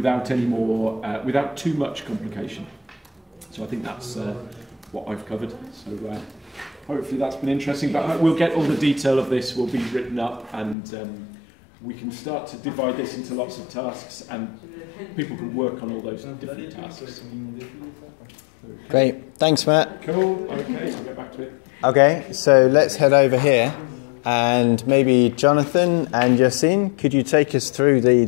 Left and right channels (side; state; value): right; drops out; at 10.8 s